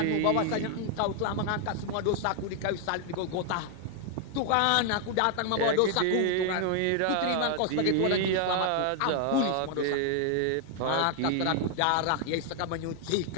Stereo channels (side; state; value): both; different; correlation 0.00